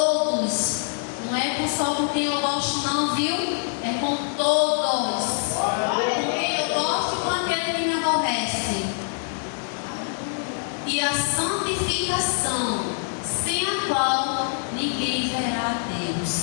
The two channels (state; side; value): silent; right; 62 dB below the other